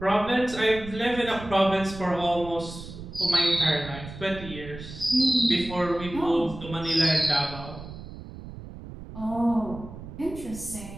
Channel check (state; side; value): noise; right; rumble, 13 dB below the sound